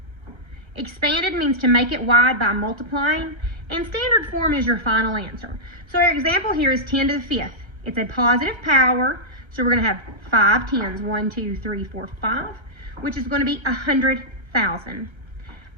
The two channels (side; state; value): left; late; 1.3 ms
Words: expanded means to make it wide by multiplying, and standard form is your final answer. So our example here is 10 to the 5th. It's a positive power, so we're going to have 5 tens, 1, 2, 3, 4, 5, which is going to be 100,000.